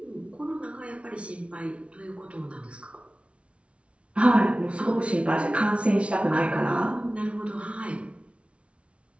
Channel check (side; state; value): left; late; 0.061 ms